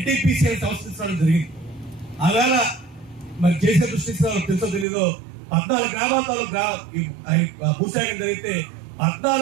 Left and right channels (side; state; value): left; drops out; at 4.9 s